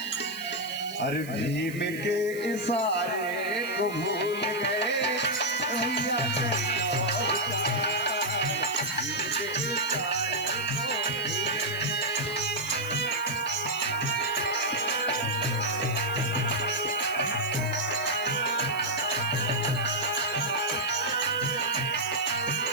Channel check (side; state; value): right; noise; hiss, 17 dB below the sound